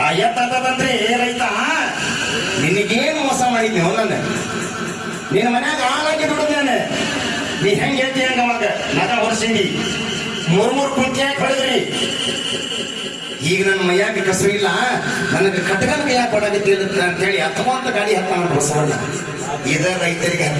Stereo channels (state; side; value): identical; both; correlation 1.00